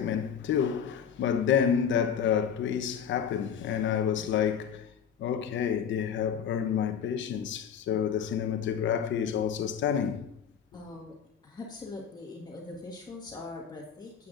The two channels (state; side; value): quieter; right; 7.9 dB